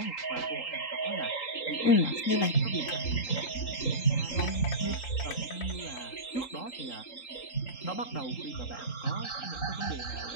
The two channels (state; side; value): late; right; 3.8 ms